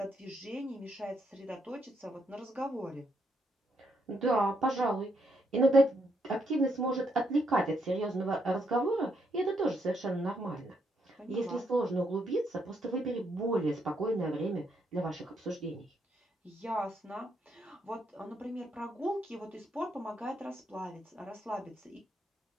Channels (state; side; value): normal; both; correlation 0.76